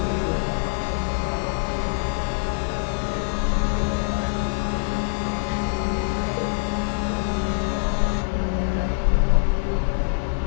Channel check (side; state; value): right; silent; digital silence